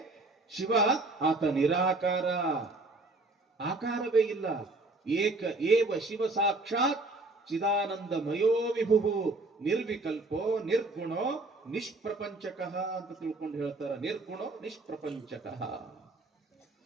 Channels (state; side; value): quieter; left; 3.1 dB